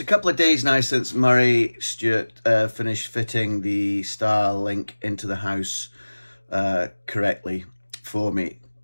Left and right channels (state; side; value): inverted; both; correlation -1.00